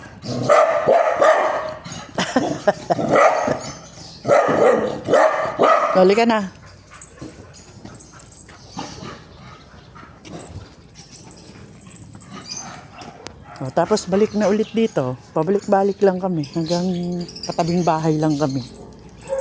Halika na. O, tapos balik na ulit dito. Pabalik-balik lang kami. Hanggang katabing bahay lang kami.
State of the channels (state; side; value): identical; both; correlation 1.00